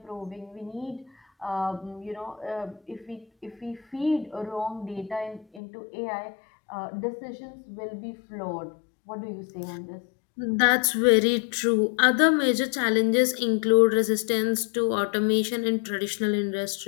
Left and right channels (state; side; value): drops out; right; at 5.6 s